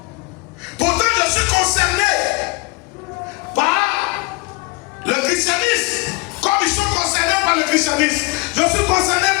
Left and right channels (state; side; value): quieter; right; 25.9 dB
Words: Pourtant, je suis concerné par le christianisme, comme ils sont concernés par le christianisme. Je suis concerné